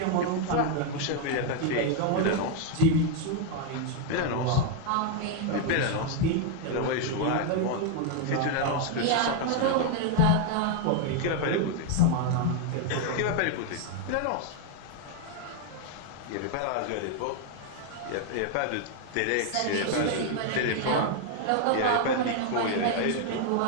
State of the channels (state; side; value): different; both; correlation 0.01